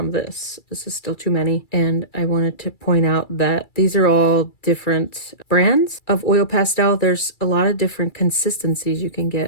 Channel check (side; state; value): right; late; 2.3 ms